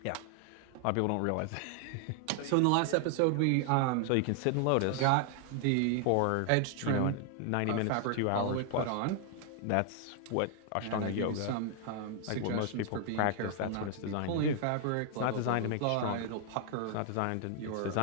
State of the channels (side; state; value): both; different; correlation 0.00